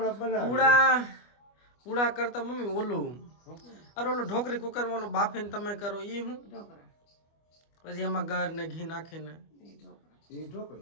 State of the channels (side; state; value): right; late; 25 ms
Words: બનાવીએ. પૂડા કરતા મમ્મી ઓલું અરે ઓલું ઢોકરી કુકરમાં ઓલું બાફીને તમે કરો એ હું ઢોકળા. પછી એમાં ગર ને ઘી નાખીને ઈ ઢોકળા. એ